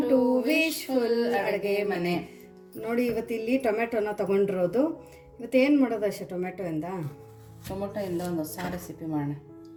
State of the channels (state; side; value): identical; both; correlation 1.00